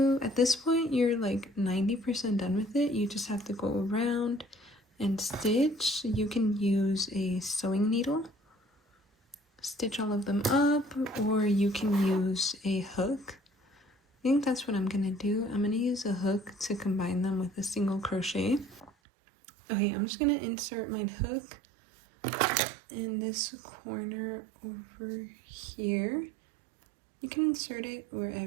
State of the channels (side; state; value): left; drops out; at 18.9 s